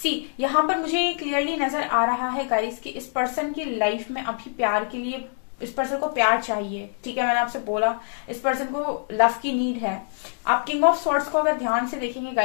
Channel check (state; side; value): silent; right; digital silence